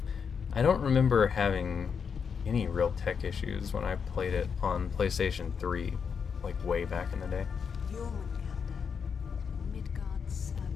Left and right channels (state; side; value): quieter; right; 6.4 dB